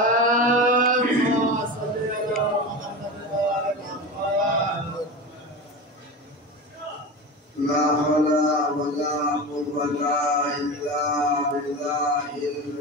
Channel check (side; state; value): both; normal; correlation 0.27